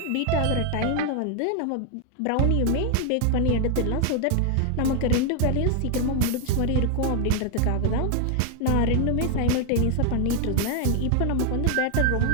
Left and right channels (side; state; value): both; different; correlation 0.00